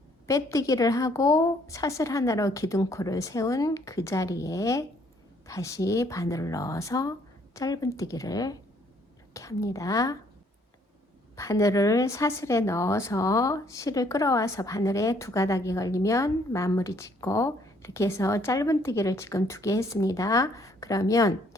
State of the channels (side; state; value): both; normal; correlation 0.64